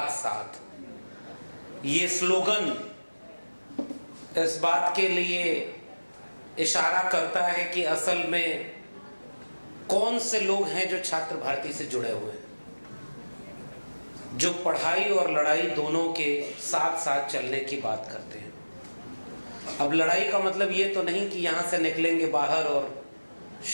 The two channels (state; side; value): inverted; both; correlation -1.00